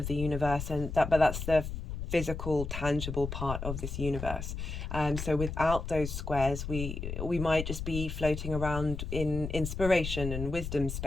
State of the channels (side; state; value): left; noise; rumble, 5 dB below the sound